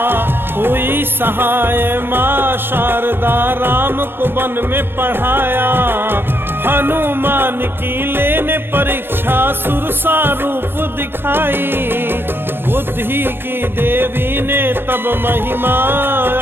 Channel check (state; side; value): late; left; 0.10 ms